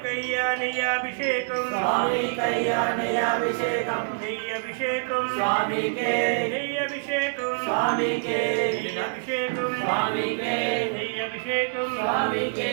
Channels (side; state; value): left; silent; digital silence